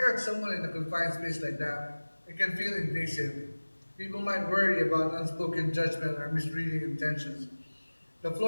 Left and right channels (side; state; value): both; inverted; correlation -1.00